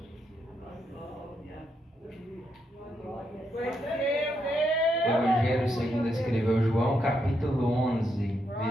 Evangelho segundo escreveu João, capítulo 11,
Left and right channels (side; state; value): both; normal; correlation 0.80